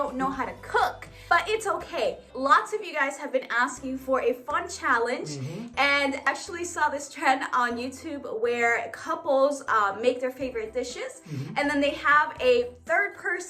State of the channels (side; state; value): both; identical; correlation 1.00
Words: know how to cook. But it's okay. Lots of you guys have been asking for a fun challenge. And actually saw this trend on YouTube where couples make their favorite dishes. And then they have a third